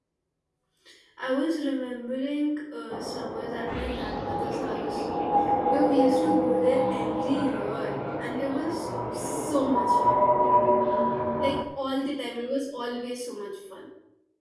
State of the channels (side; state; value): both; identical; correlation 1.00